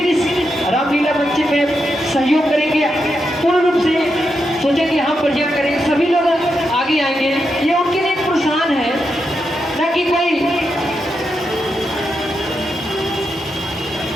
इस रामलीला बच्चे में सहयोग करेंगे, पूर्ण रूप से सोचेंगे हम प्रोजेक्ट करेंगे, सभी लोग आगे आएंगे। ये उनके लिए एक प्रोत्साहन है, ना कि कोई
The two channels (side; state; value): both; normal; correlation 0.85